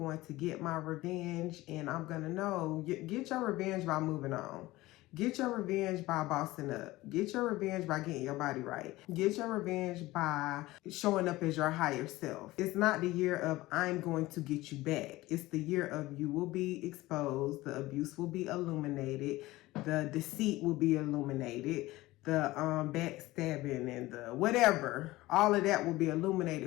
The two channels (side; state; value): right; quieter; 18.6 dB